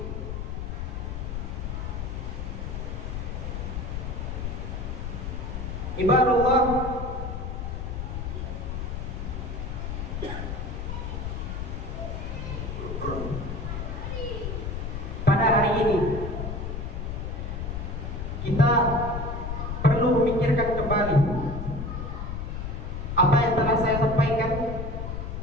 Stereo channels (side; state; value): left; noise; rumble, 4 dB below the sound